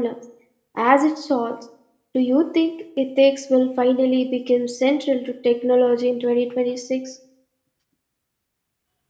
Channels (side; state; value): both; identical; correlation 1.00